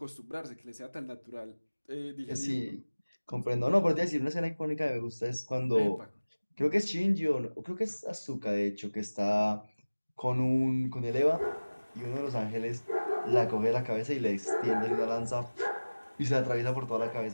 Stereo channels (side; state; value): both; inverted; correlation -1.00